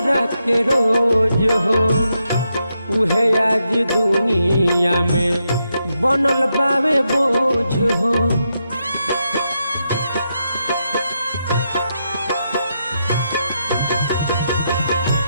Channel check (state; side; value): inverted; both; correlation -0.83